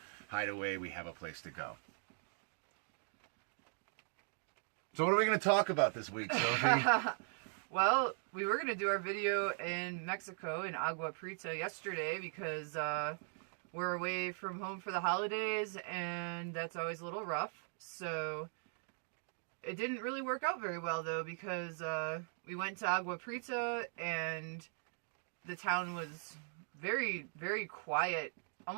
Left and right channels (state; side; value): silent; left; 51 dB below the other